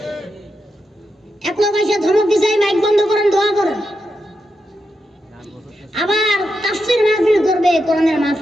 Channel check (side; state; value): both; normal; correlation 0.85